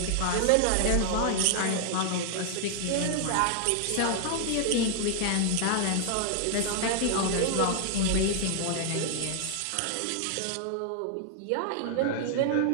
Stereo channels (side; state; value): both; different; correlation -0.01